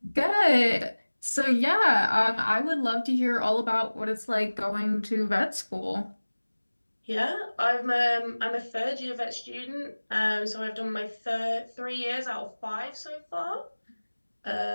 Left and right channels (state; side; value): inverted; both; correlation -1.00